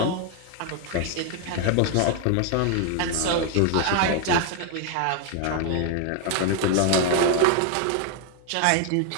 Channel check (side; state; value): both; different; correlation 0.00